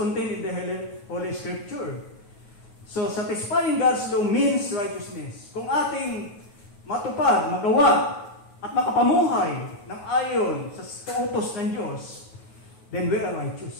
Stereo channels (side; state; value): right; late; 9.4 ms